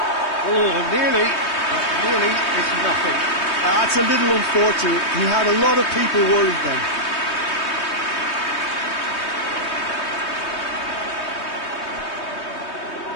Oh, nearly, but nearly is nothing. That's a little unfortunate. He had a lot of people worried then.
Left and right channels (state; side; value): late; right; 3.2 ms